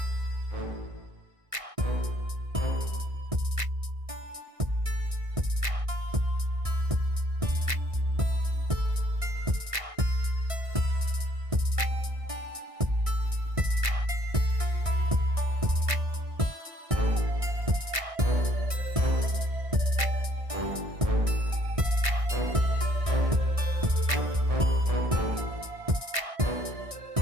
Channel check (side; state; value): left; late; 1.6 ms